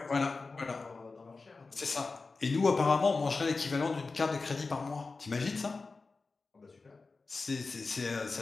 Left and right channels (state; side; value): quieter; right; 4.0 dB